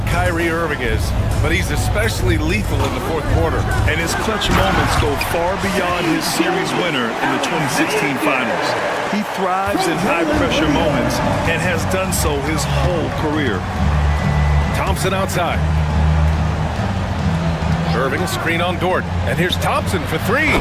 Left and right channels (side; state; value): both; identical; correlation 1.00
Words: Kyrie Irving is, but he's especially lethal in the 4th quarter. And his clutch moments go far beyond his series winner in the 2016 finals. He thrives in high-pressure moments and has done so his whole career. Thompson outside. Irving, a screen on Dort. And here's Thompson for 3.